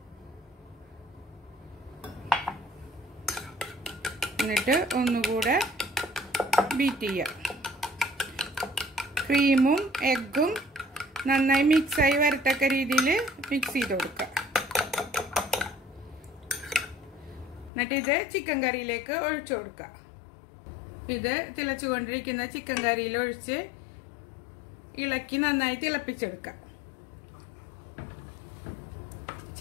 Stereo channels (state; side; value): drops out; right; at 17.7 s